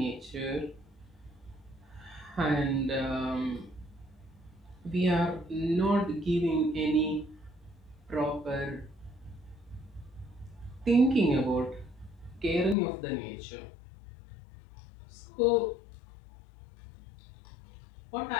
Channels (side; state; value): right; drops out; at 12.8 s